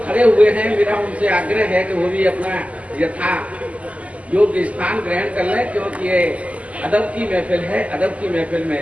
खड़े हुए हैं मेरा उनसे आग्रह है कि वो भी अपना यथा योग्य स्थान ग्रहण कर लें, क्योंकि ये अदब की महफिल है। अदब की महफिल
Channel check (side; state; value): left; late; 0.068 ms